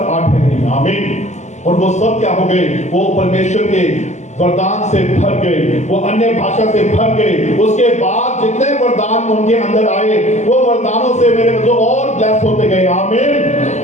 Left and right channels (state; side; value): late; right; 0.34 ms